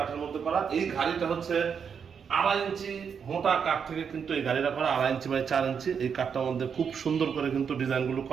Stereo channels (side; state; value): left; quieter; 6.8 dB